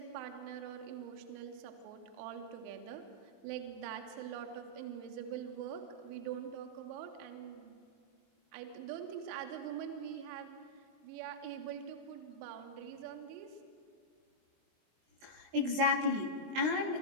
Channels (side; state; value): left; late; 19 ms